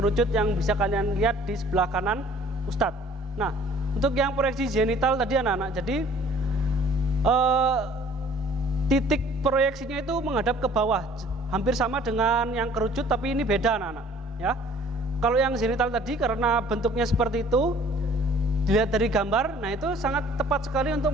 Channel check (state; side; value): normal; both; correlation 0.53